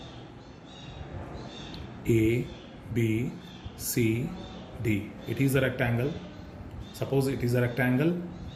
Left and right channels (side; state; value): both; identical; correlation 1.00